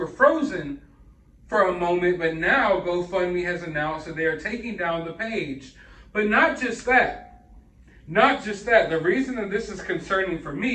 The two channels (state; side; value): identical; both; correlation 1.00